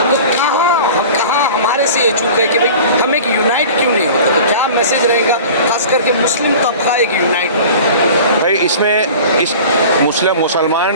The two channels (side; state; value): both; inverted; correlation -0.40